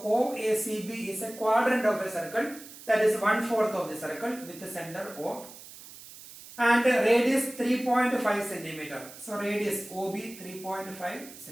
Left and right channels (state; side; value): noise; right; hiss, 17 dB below the sound